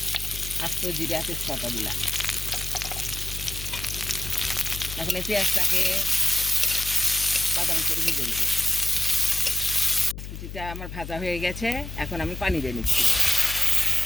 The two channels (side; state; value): left; noise; hum, 10 dB below the sound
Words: আস্ত জিরা তেজপাতা দিলাম। এখন এই পেঁয়াজটাকে বাদামি করে ভেজে নেব। কুচিটা আমার ভাজা হয়ে গেছে, এখন আমি পানি দিয়ে নিচ্ছি।